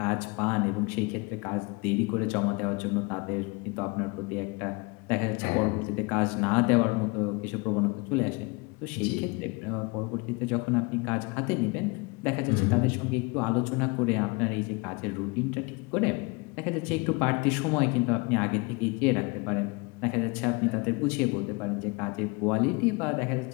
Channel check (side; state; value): right; quieter; 28.1 dB